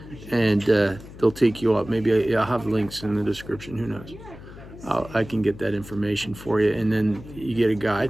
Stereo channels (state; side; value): noise; left; hum, 16 dB below the sound